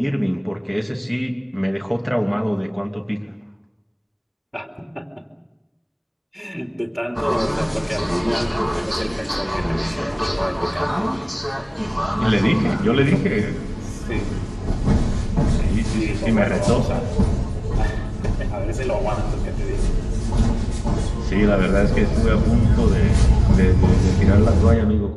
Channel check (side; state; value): both; identical; correlation 1.00